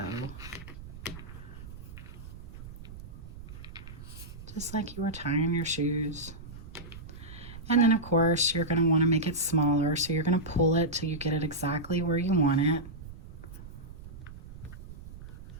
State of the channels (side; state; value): right; noise; rumble, 14 dB below the sound